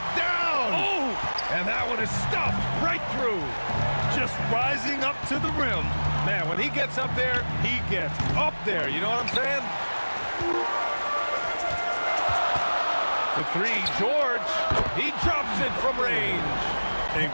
down! Oh. And that one is stuffed right through. Just rising up to the rim. Man, when he gets up there, he gets up there. You know what I'm saying? The 3, George. He drops it from range. And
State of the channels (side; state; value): both; inverted; correlation -1.00